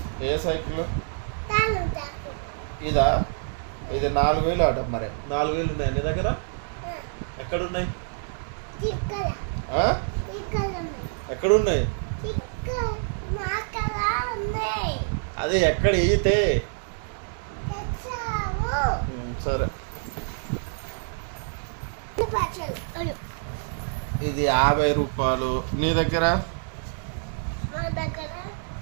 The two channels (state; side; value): silent; left; digital silence